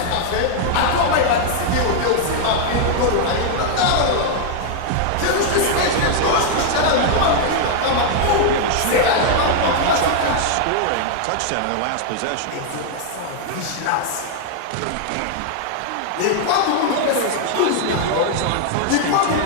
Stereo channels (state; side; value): different; both; correlation 0.00